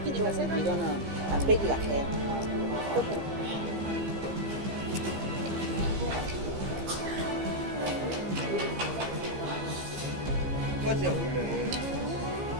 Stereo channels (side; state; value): left; late; 15 ms